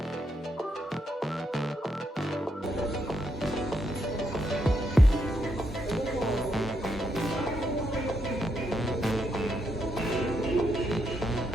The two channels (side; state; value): both; normal; correlation 0.79